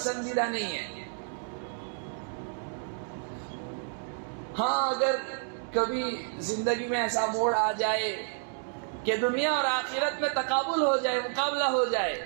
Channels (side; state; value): left; silent; 58 dB below the other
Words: نہیں ہے۔ ہاں اگر کبھی زندگی میں ایسا موڑ آ جائے کہ دنیا اور آخرت میں تقابل ہو جائے، مقابلہ ہو جائے،